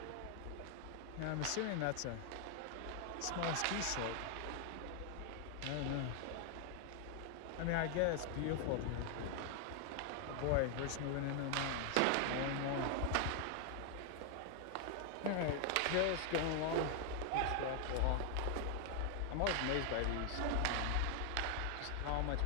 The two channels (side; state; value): both; different; correlation 0.00